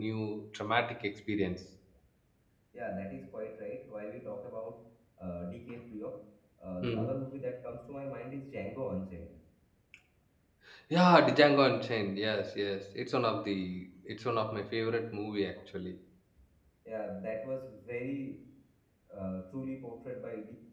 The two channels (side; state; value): both; identical; correlation 1.00